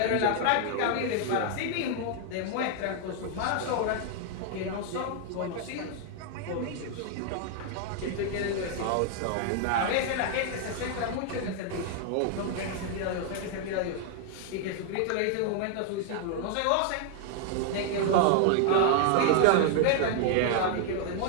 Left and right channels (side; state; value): both; different; correlation 0.00